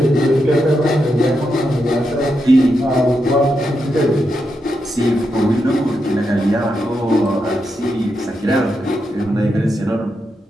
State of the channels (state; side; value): normal; both; correlation 0.84